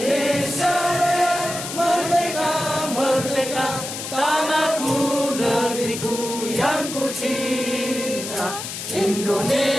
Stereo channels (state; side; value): noise; left; hiss, 7 dB below the sound